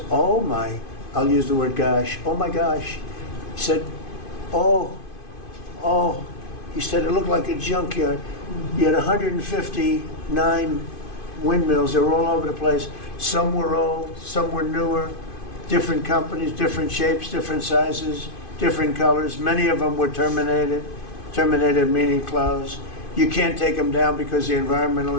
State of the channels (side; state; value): right; late; 2.5 ms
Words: oh my, I'll use the word gosh, oh my gosh. He said, oh, he said it looked like a junkyard. You had 159 windmills. They were all over the place. Some were old, some were newer, different companies, different shapes, different sizes, different colors. Many of them were terminated meaning closed. You can't take them down because the